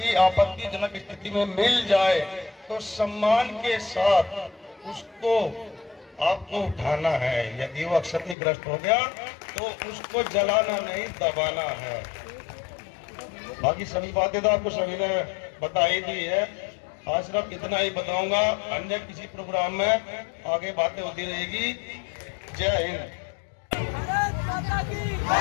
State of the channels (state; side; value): drops out; right; at 8.3 s